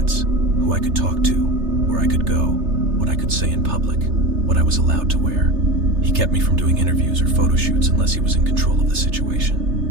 who I could talk to, where I could go, what I could say in public, what I was allowed to wear. He kept me from doing interviews or photo shoots unless he was in control of the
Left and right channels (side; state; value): left; late; 3.3 ms